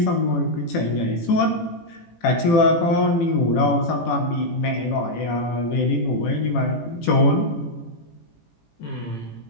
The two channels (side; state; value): right; late; 18 ms